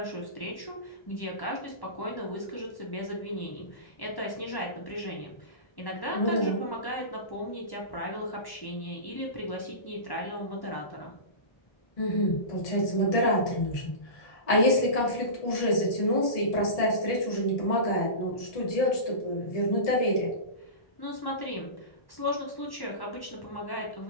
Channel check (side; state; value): right; late; 1.1 ms